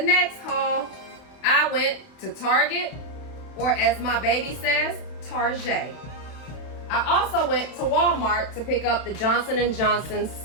haul. I went to Target, or as my baby says, Target. I also went to Walmart to pick up the Johnson & Johnson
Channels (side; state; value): right; late; 32 ms